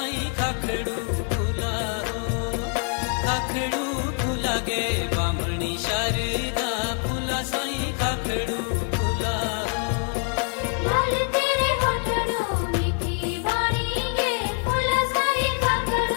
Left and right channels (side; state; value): right; quieter; 38.9 dB